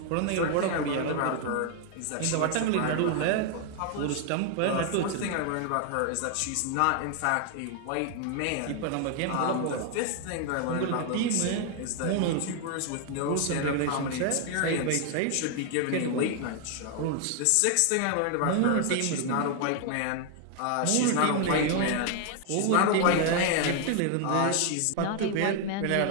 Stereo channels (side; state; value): both; different; correlation 0.00